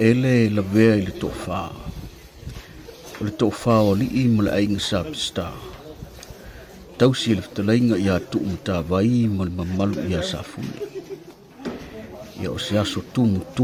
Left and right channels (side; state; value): both; identical; correlation 1.00